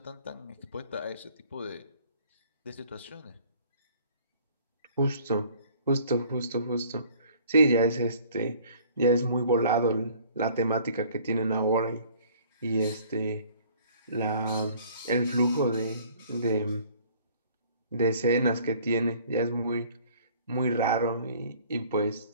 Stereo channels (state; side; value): inverted; both; correlation -0.54